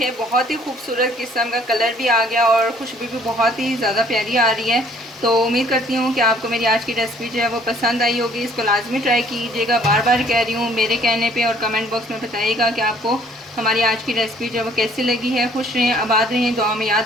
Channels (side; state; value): both; normal; correlation 0.59